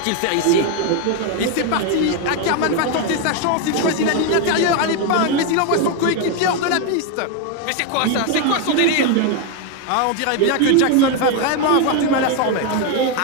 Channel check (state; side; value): different; both; correlation 0.01